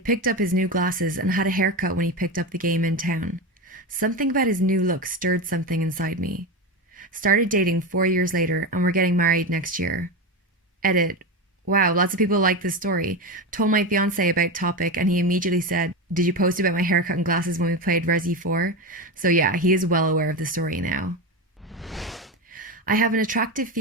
picked up his new glasses and had a haircut when he picked up the game in town. Something about his new look stirred something inside me. Started dating 4 years later, and we're getting married next year. Edit. Wow, lots of people like this story. Told my fiance about topic and he immediately said, "Did you post about my haircut and glasses when we played Resi 4?" So yeah, he is well aware of the story now. I have an attractive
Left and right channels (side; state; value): both; normal; correlation 0.18